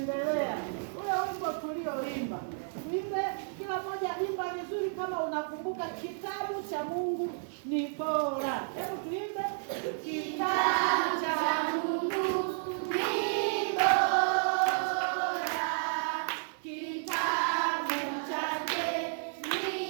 Ule wimbo tulioimba, tuimbe kila mmoja, imba vizuri kama unakumbuka. Kitabu cha Mungu ni bora. Hebu tuimbe. Kitabu cha Mungu ni bora.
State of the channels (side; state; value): left; silent; digital silence